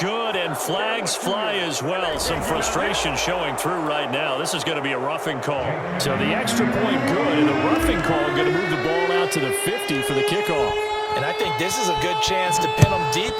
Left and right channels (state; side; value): identical; both; correlation 1.00